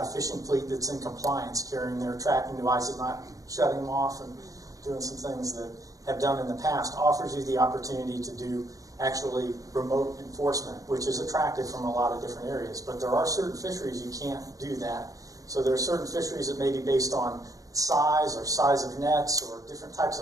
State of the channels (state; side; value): late; left; 0.17 ms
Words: a fishing fleet that's in compliance, carrying their tracking devices, not shutting them off and doing some things that have done in the past, offers you the opportunity to do actually remote enforcement, which is attractive from a lot of different areas. But there are certain fisheries you can't do that. So there are certain fisheries that may be based on size or size of nets or different types